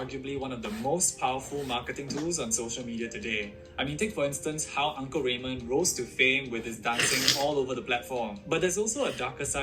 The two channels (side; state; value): both; identical; correlation 1.00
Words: one of the most powerful marketing tools on social media today. I mean, take for instance how Uncle Raymond rose to fame with his dancing all over the platform. But there's also a darker